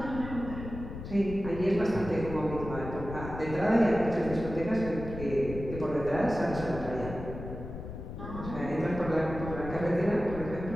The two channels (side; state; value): left; noise; rumble, 9 dB below the sound